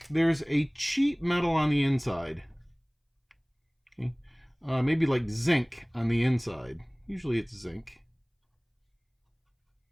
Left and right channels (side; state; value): both; identical; correlation 1.00